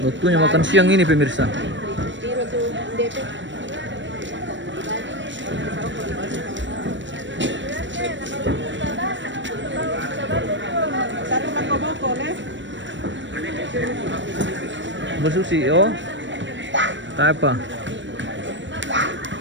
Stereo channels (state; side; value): late; left; 0.54 ms